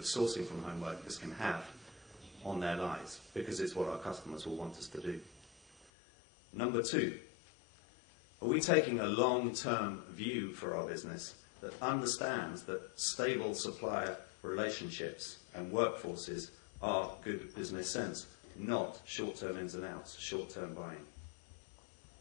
sourcing from home workers can have on their lives, because it's what our customers will want us to do. Number 2, are we taking a long-term view for our business that understands that stable supplier relationships and workforces are good business sense? not short-term ins and outs, short-term buying.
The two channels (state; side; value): drops out; right; at 5.9 s